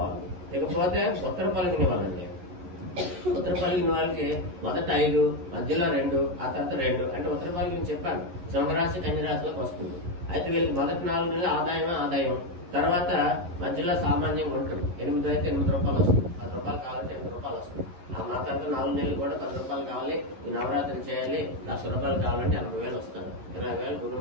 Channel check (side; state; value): left; late; 11 ms